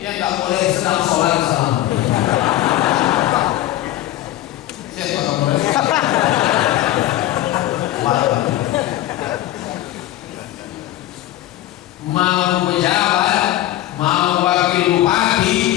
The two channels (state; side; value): quieter; right; 14.5 dB